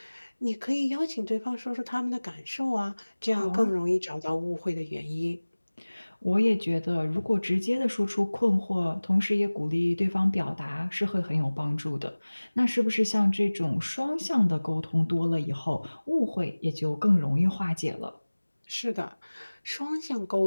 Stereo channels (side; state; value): both; inverted; correlation -1.00